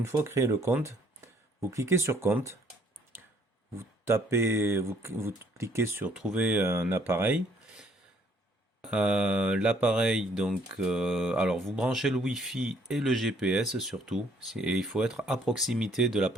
fois créé le compte, vous cliquez sur compte, vous cliquez sur trouver un appareil. L'appareil, donc, alors vous branchez le Wi-Fi et le GPS surtout, et il faut être à proximité de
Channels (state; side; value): normal; both; correlation 0.63